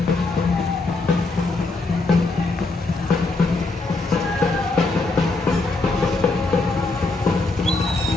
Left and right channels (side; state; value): right; quieter; 3.4 dB